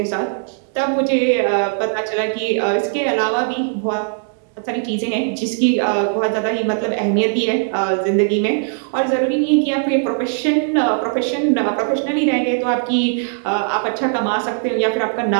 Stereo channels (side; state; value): left; silent; digital silence